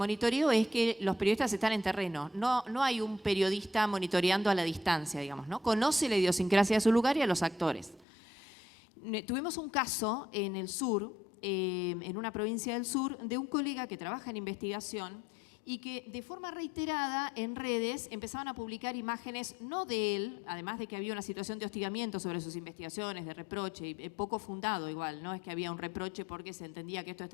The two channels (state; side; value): drops out; right; at 8.1 s